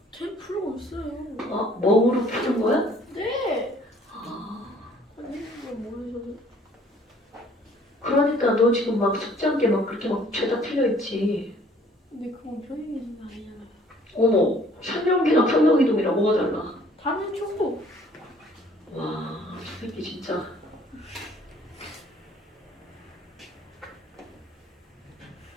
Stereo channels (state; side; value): normal; both; correlation 0.58